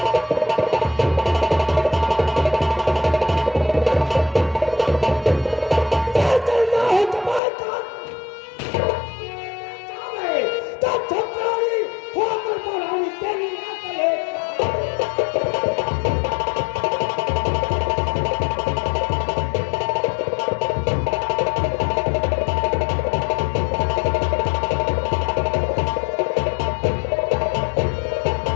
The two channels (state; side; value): drops out; right; at 7.4 s